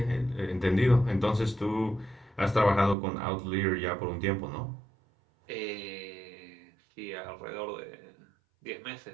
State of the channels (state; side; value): drops out; left; at 3.0 s